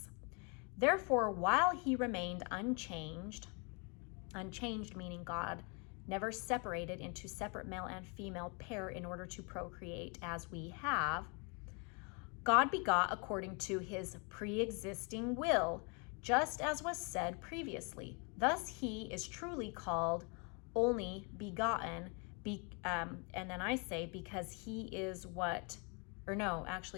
Therefore, while he remained unchanged meaning God never separated into separate male and female pair in order to procreate as we have, God begot according to his pre-existing will, just as was said previously. Thus he is truly called only begotten, and then I say because he is what, or no,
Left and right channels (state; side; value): quieter; right; 34.0 dB